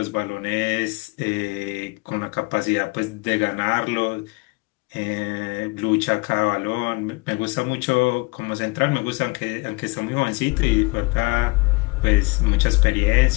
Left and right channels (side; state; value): right; quieter; 26.3 dB